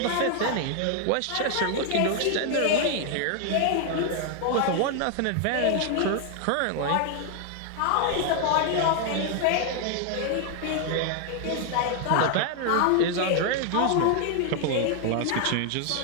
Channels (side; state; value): both; different; correlation 0.00